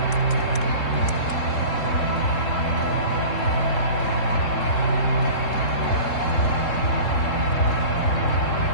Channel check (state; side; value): late; right; 3.7 ms